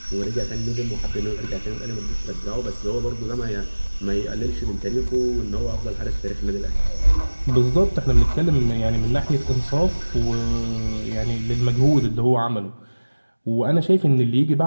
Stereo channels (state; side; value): inverted; both; correlation -1.00